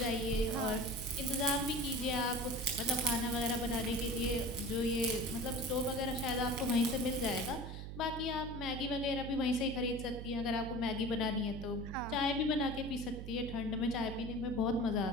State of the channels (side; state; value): right; noise; hum, 8 dB below the sound